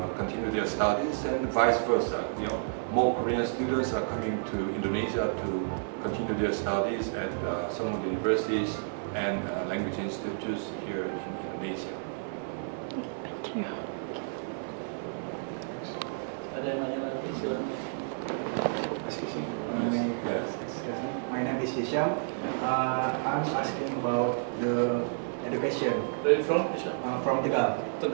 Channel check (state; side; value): silent; left; 57 dB below the other